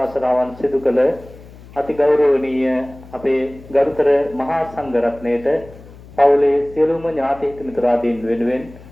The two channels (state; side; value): noise; left; hum, 20 dB below the sound